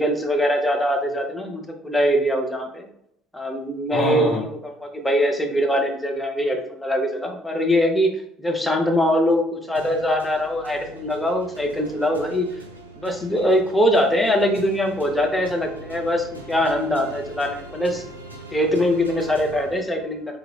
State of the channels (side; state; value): both; normal; correlation 0.67